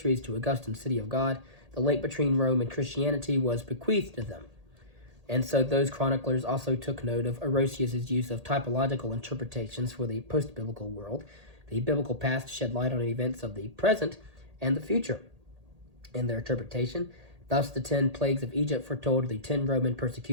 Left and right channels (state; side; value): late; left; 1.8 ms